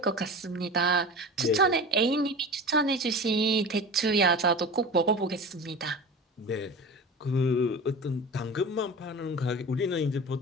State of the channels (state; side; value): normal; both; correlation 0.33